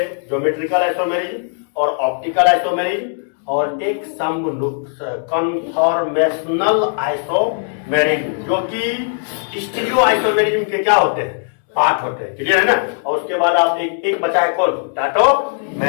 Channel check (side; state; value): right; silent; digital silence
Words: ज्योमेट्रिकल आइसोमेरिज्म और ऑप्टिकल आइसोमेरिज्म, और एक कन्फॉर्मेशनल आइसोमेरिज्म, जो कि स्टीरियो आइसोमेरिज्म के क्या होते हैं, पार्ट होते हैं। क्लियर है ना? और उसके बाद आप एक बचा है कौन,